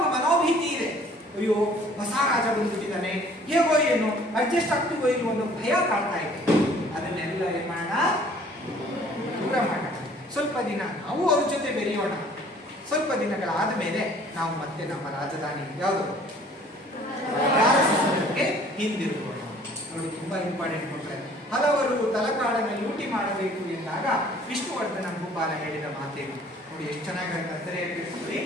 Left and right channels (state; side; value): normal; both; correlation 0.55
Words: ಮನೋಭೀತಿ ಇದೆ. ಅಯ್ಯೋ, ಹೊಸ ರಾಜ ಬಂದ್ಬಿಟ್ಟಿದ್ದಾನೆ, ಹೇಗೋ ಏನು ಅಡ್ಜಸ್ಟ್ ಆಗ್ತೀವೋ ಇಲ್ವೋ ಒಂದು ಭಯ ಕಾಡ್ತಾ ಇದೆ. ಅದನ್ನೆಲ್ಲ ಏನ್ ಮಾಡೋಣ? ದೂರ ಮಾಡೋಣ. ಸ್ವಲ್ಪ ದಿನ ನಾವು ಅವ್ರ ಜೊತೆ ಬೆರೆಯೋಣ. ಸ್ವಲ್ಪ ದಿನಗಳಾದ ಮೇಲೆ ನಾವು ಮತ್ತೆ ನಮ್ಮ ರಾಜಧಾನಿ ಯಾವುದು ಹಿಂದಿರುಗೋಣ. ನೋಡಿ, ತುಂಬಾ ಇಂಪಾರ್ಟೆಂಟ್ ಕೊಟ್ರೆ. ಹಲವರು ತಲಕಾಡನ್ನು ಲೂಟಿ ಮಾಡಬೇಕು ಎಂದಾಗ ವಿಷ್ಣುವರ್ಧನ ಭೂಪಾಲ ಹೇಳಿದ ಮಾತೇನು ನೋಡಿ, ಎಷ್ಟು ಚೆನ್ನಾಗಿ.